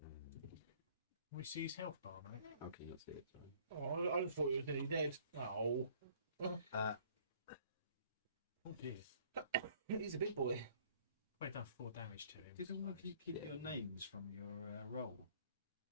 We see his health bar, mate. Okay, let's see it. Oh, I just thought he was nearly dead. Oh. Oh dear. He's a big boy. I've done 4 damage to him. Did all of you keep your names from your roll?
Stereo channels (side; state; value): both; inverted; correlation -0.57